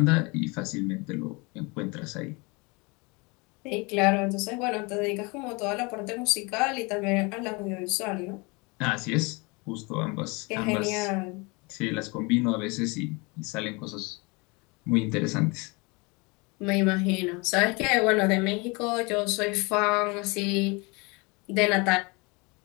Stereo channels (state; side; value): quieter; right; 28.0 dB